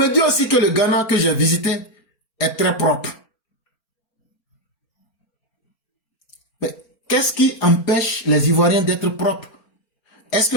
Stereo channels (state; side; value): late; right; 4.4 ms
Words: dit aussi que le Ghana que j'ai visité est très propre. Mais qu'est-ce qui empêche les Ivoiriens d'être propres? Est-ce que